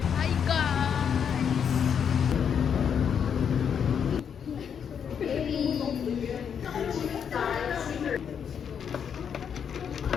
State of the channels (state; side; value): quieter; right; 7.6 dB